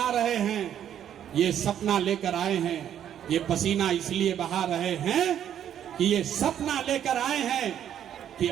रहे हैं, ये सपना लेकर आए हैं। ये पसीना इसलिए बहा रहे हैं कि ये सपना लेकर आए हैं कि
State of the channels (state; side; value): quieter; left; 10.0 dB